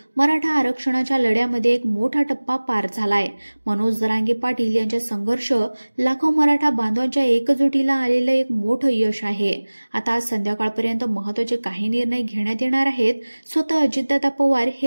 मराठा आरक्षणाच्या लढ्यामध्ये एक मोठा टप्पा पार झालाय. मनोज जरांगे पाटील यांचा संघर्ष लाखो मराठा बांधवांच्या एकजुटीला आलेलं एक मोठं यश आहे. आता आज संध्याकाळपर्यंत महत्त्वाचे काही निर्णय घेण्यात येणार आहेत. स्वतः अजितदादा पवार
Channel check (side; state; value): both; inverted; correlation -1.00